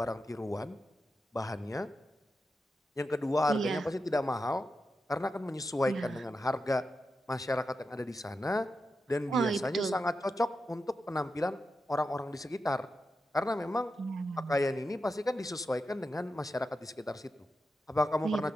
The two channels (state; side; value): normal; both; correlation 0.88